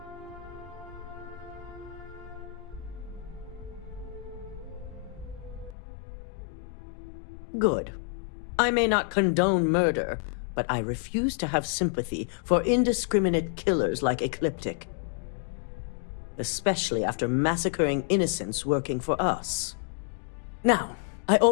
Good. I may not condone murder, but I refuse to have sympathy for indiscriminate killers like Ecliptic. Especially after massacring innocents working for us. Now, I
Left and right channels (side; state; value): right; drops out; at 5.8 s